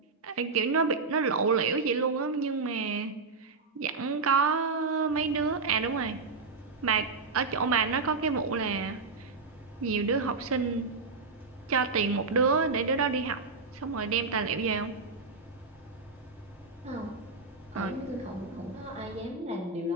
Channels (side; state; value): left; quieter; 4.3 dB